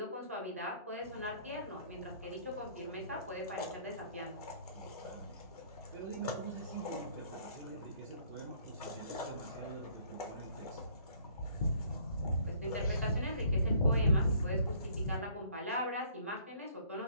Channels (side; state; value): both; inverted; correlation -0.58